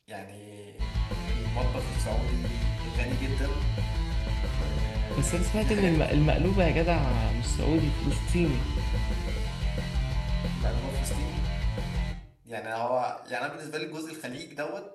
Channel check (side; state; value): both; identical; correlation 1.00